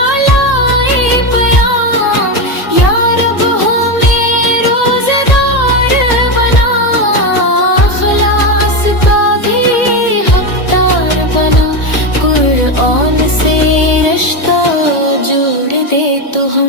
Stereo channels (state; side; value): late; right; 1.7 ms